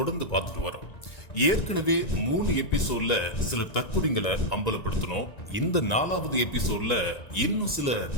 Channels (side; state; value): right; late; 1.9 ms